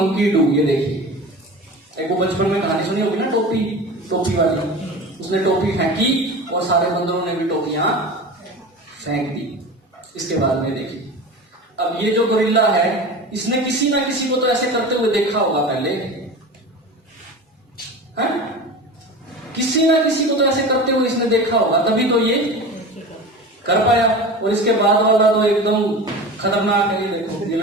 do. ये देखिए, एक वो बचपन में कहानी सुनी होगी ना, टोपी वाली। उसने टोपी फेंकी और सारे बंदरों ने भी टोपियां फेंक दी। इसके बाद में देखिए, अब ये जो गोरिल्ला है, इसने किसी ना किसी को तो ऐसे करते हुए देखा होगा पहले, है? किसी ना किसी को तो ऐसे करते हुए इसने देखा होगा, तभी तो ये कर पाया। और इसके बाद वाला तो एकदम खतरनाक है। ये देखो, ये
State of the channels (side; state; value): both; normal; correlation 0.32